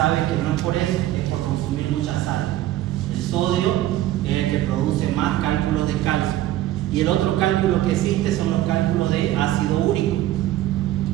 que no es por eso, es por consumir mucha sal. El sodio es el que produce más cálculos de calcio. Y el otro cálculo que existe son los cálculos de ácido úrico.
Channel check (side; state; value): left; quieter; 14.2 dB